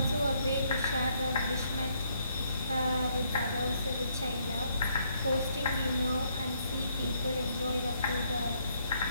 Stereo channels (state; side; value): inverted; both; correlation -0.71